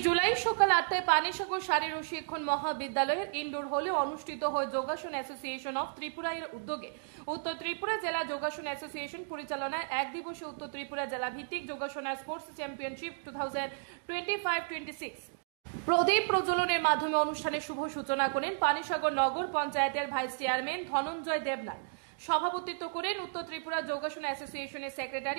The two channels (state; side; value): silent; left; digital silence